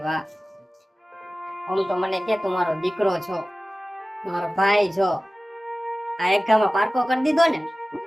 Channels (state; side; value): normal; both; correlation 0.97